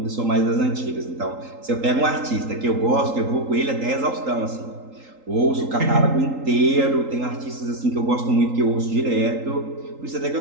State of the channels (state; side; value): late; left; 3.8 ms